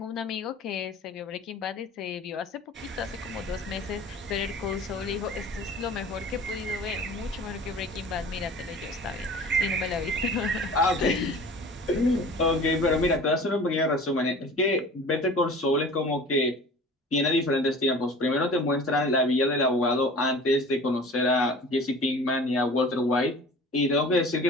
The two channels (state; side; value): normal; both; correlation 0.42